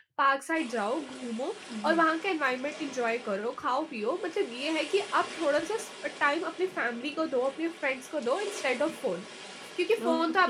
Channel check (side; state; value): both; identical; correlation 1.00